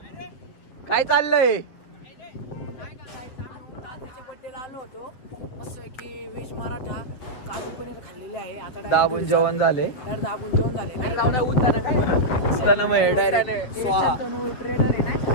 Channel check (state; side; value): late; right; 7.9 ms